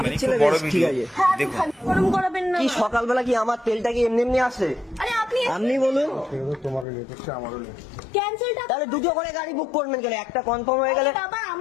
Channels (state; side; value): drops out; right; at 6.9 s